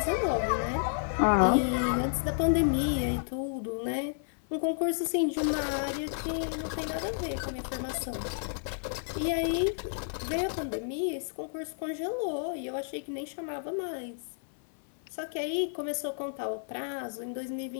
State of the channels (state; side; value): silent; right; 57 dB below the other